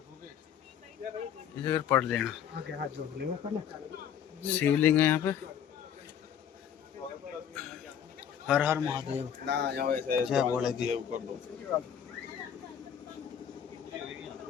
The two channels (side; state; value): right; quieter; 8.8 dB